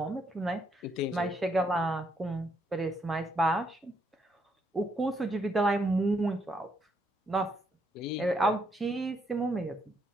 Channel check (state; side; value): normal; both; correlation 0.75